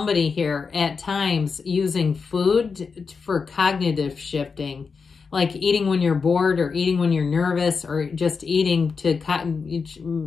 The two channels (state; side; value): quieter; right; 5.2 dB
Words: here at times using food for cognitive shifting, like eating when you're bored or eating when you're nervous, or just eating to,